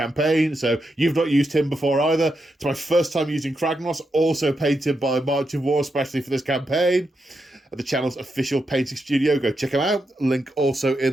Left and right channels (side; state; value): both; normal; correlation 0.85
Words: so you've not used him before either. It's my first time using Kragnos, also painted by March of War especially for this campaign. At the channel's official painting studio, go check them out, link also